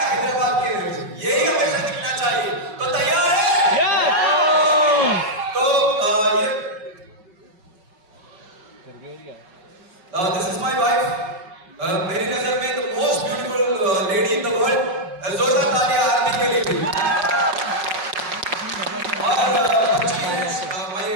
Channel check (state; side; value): late; left; 5.4 ms